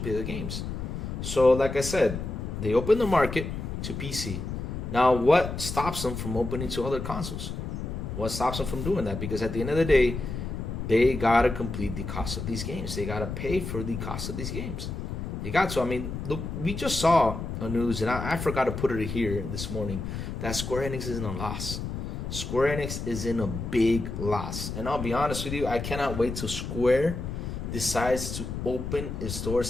the games. So like I said, they open the market to PC. Now, what stops them from opening to other consoles? What stops them from doing that? Because at the end of the day, they gotta complete the cost of these games. They gotta pay for the cost of these games. They got to. I mean, look, we just saw a news, and I forgot to put it here this morning, that Square Enix is in a loss. Square Enix is in a big loss. And I'll be honest with you, I cannot wait till Square decides to open its doors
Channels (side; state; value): left; noise; rumble, 5 dB below the sound